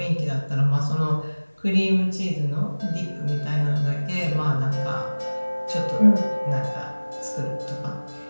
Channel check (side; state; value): both; inverted; correlation -1.00